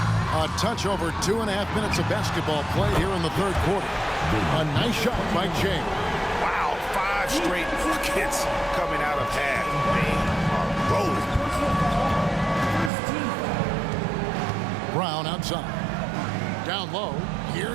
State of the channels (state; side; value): drops out; left; at 12.9 s